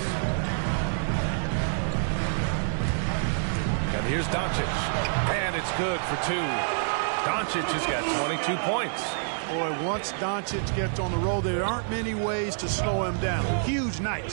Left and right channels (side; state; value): left; silent; 58 dB below the other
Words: And here's Doncic. And it's good for two. Doncic has got 22 points. Boy, once Doncic gets on the road, there aren't many ways to slow him down. Huge night